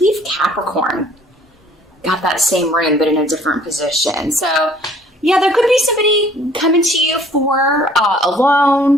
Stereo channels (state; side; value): normal; both; correlation 0.56